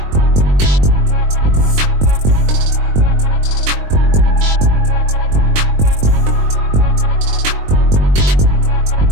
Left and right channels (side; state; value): left; late; 21 ms